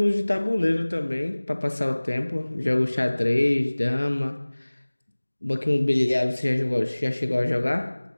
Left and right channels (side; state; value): both; inverted; correlation -1.00